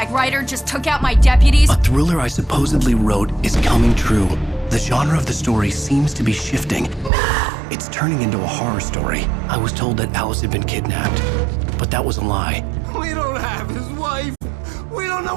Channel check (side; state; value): left; drops out; at 7.1 s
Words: Ryder just took out my deputies? A thriller I supposedly wrote is coming true. The genre of the story seems to be shifting. It's turning into a horror story. I was told that Alice had been kidnapped, but that was a lie. We don't have his wife. We don't know